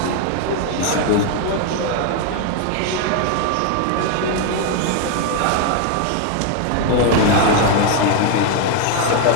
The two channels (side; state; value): both; different; correlation 0.01